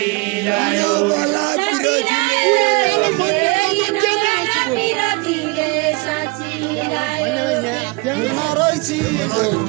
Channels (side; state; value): left; quieter; 26.1 dB